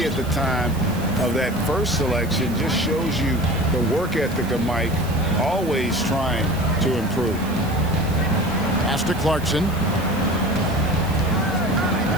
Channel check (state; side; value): noise; right; hiss, 18 dB below the sound